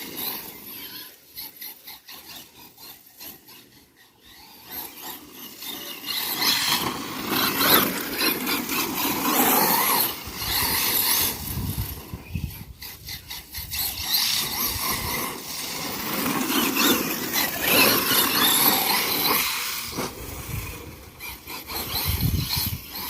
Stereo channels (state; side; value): identical; both; correlation 1.00